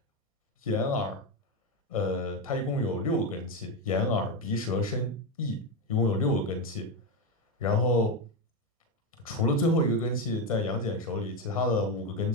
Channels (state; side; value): normal; both; correlation 0.11